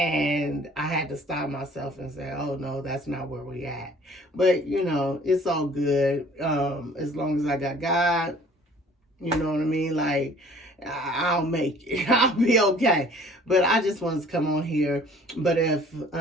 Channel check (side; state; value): both; normal; correlation 0.52